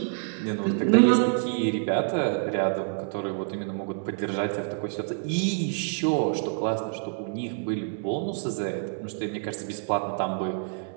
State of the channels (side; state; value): left; silent; 60 dB below the other